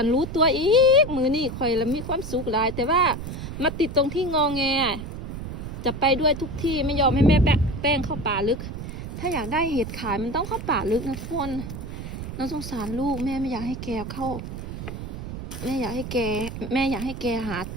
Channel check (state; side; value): noise; right; rumble, 8 dB below the sound